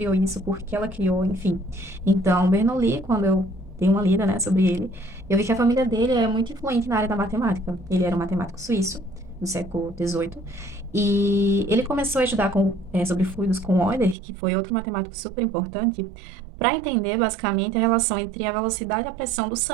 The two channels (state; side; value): drops out; left; at 14.2 s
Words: isso, por que ela criou, enfim. Então, Bernoulli, quando eu dei uma lida, né, sobre ele, eu vi que a família dele é muito influente na área da matemática. Ele era um matemático suíço, do século XVIII, e ele começou a estudar sobre fluidos com Euler, que foi outro matemático super importante, para entender basicamente a relação entre a velocidade e a pressão do